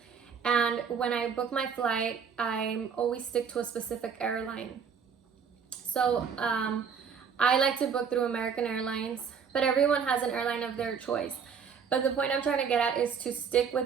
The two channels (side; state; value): left; quieter; 6.6 dB